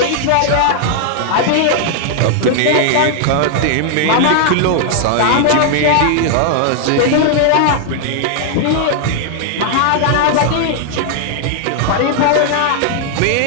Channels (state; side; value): different; both; correlation 0.00